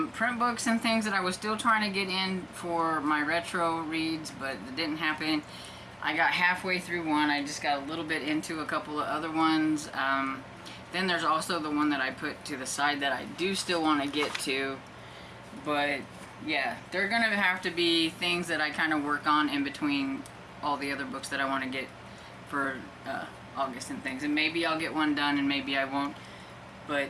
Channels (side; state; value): both; identical; correlation 1.00